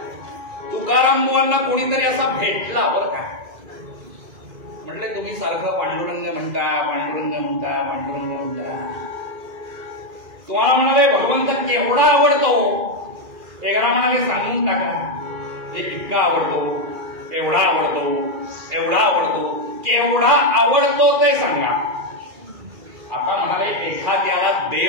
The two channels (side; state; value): left; late; 2.4 ms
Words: तुकाराम बुवांना कोणीतरी असा भेटला बरं का. म्हटलं तुम्ही सारखं पांडुरंग म्हणता पांडुरंग म्हणता पांडुरंग म्हणता. तुम्हाला म्हणाले भगवंत केवढा आवडतो. एकदा म्हणाले सांगून टाका. इतका आवडतो, एवढा आवडतो, एवढा आवडतो, केवढा आवडतो ते सांगा. आता म्हणाले एखाद्याला